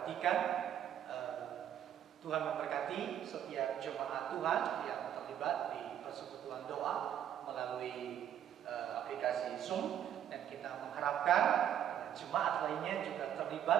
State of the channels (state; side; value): quieter; left; 10.1 dB